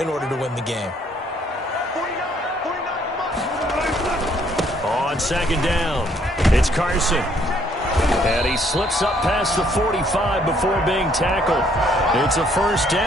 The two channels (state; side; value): normal; both; correlation 0.65